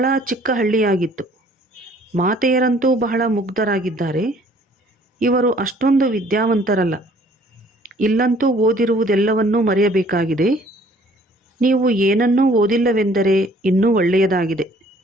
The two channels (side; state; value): both; normal; correlation 0.58